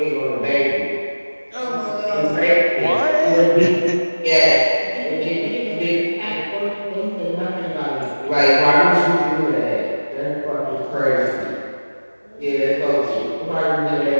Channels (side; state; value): both; inverted; correlation -1.00